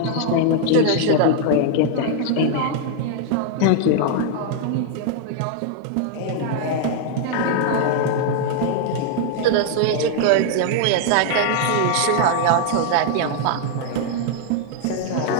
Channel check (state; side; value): different; both; correlation 0.00